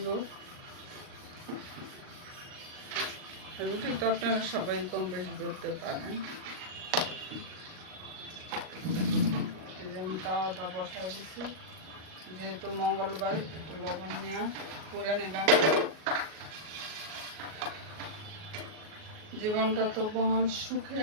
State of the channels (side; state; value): left; late; 38 ms